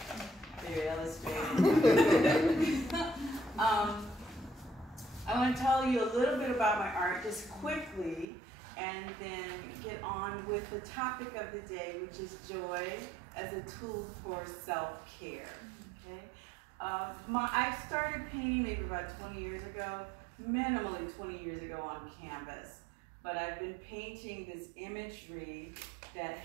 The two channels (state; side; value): drops out; left; at 8.2 s